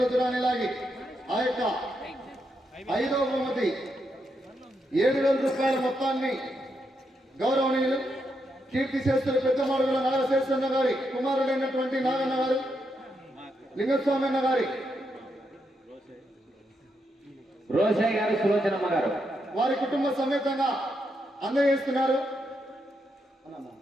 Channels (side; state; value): both; normal; correlation 0.81